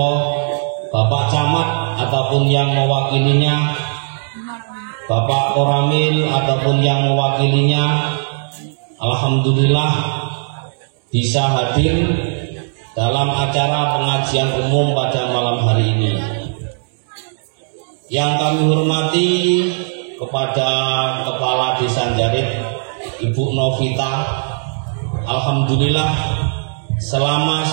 Bapak Camat ataupun yang mewakilinya, Bapak Koramil ataupun yang mewakilinya, alhamdulillah bisa hadir dalam acara pengajian umum pada malam hari ini. Yang kami hormati kepada Kepala Desa Jarit, Ibu Novita, alhamdulillah selama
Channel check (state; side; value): silent; left; digital silence